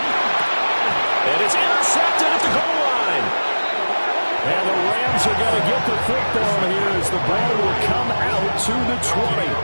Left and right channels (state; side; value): inverted; both; correlation -1.00